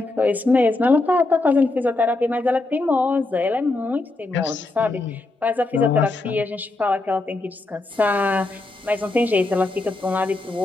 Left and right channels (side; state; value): right; quieter; 3.1 dB